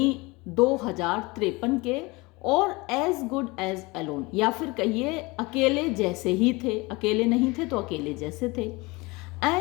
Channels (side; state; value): right; quieter; 24.4 dB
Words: 2053 के, और एज गुड एज अलोन, या फिर कहिए अकेले जैसे ही थे, अकेले नहीं थे तो अकेले जैसे थे।